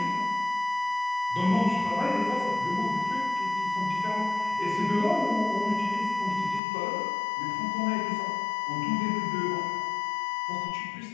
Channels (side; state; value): right; drops out; at 6.6 s